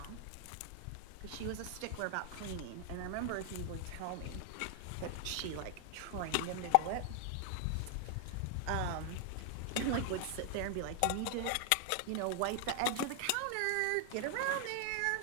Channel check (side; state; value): both; different; correlation 0.00